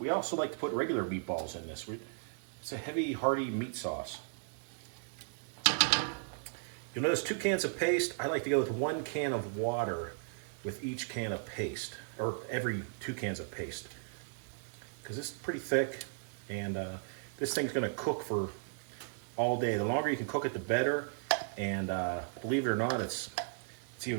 also like to put regular meatballs in this. It's a heavy, hearty meat sauce. You'll notice 2 cans of paste. I like to go with 1 can of water with each can of paste, or every 2 cans of paste, because it's pretty thick, and this thing's going to cook for all day. The longer you can cook it, the better. And believe it or not, it's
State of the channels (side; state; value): left; silent; digital silence